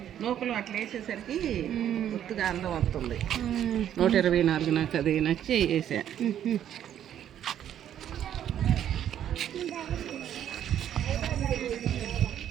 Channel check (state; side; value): quieter; left; 10.4 dB